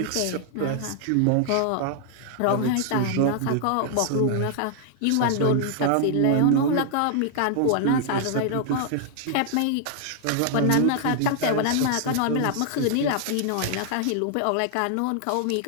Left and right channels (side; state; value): both; different; correlation 0.00